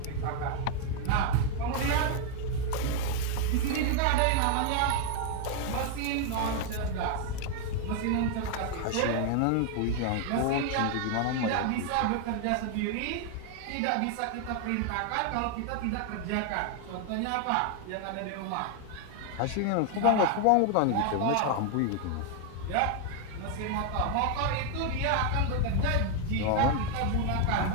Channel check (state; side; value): different; both; correlation 0.00